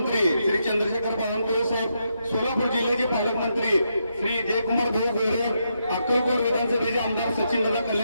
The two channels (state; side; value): inverted; both; correlation -0.81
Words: श्री चंद्रशेखर बावनकुळे साहेब, सोलापूर जिल्ह्याचे पालकमंत्री श्री जयकुमार भाऊ गोरे, अक्कलकोट विधानसभेचे आमदार सचिनदादा